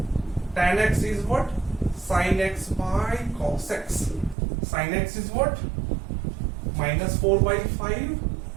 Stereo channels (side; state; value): left; drops out; at 4.4 s